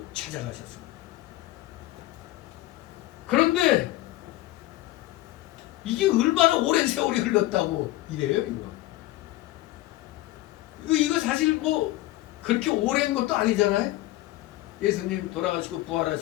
찾아가셨습니다. 그런데 이게 얼마나 오랜 세월이 흘렀다고 이래요, 이거 사실 뭐 그렇게 오랜 것도 아니잖아요. 예수님 돌아가시고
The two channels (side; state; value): right; quieter; 16.8 dB